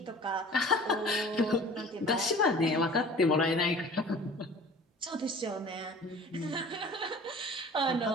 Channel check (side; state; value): both; normal; correlation 0.45